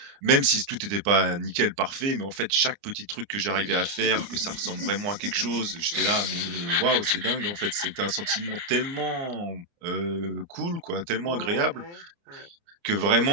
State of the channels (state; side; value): late; left; 29 ms